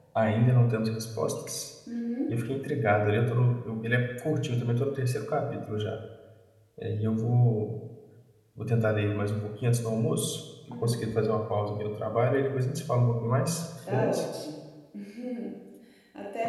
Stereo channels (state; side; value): identical; both; correlation 1.00